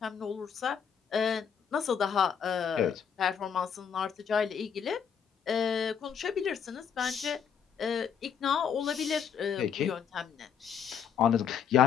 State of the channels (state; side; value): quieter; right; 7.5 dB